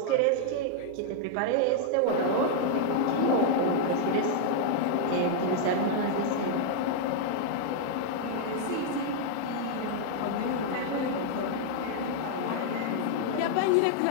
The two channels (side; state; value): both; different; correlation -0.01